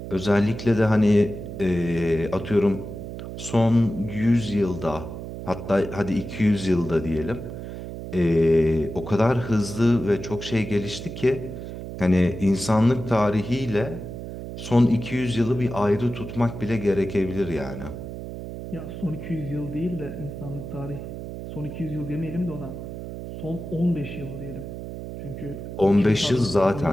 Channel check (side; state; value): right; noise; hum, 9 dB below the sound